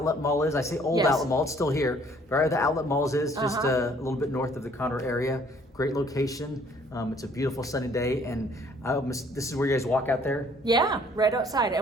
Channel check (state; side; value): normal; both; correlation 0.60